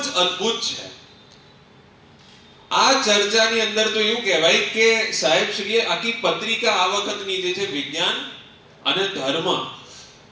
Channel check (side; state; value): both; identical; correlation 1.00